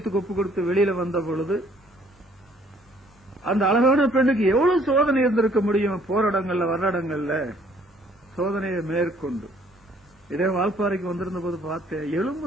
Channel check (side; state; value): both; normal; correlation 0.61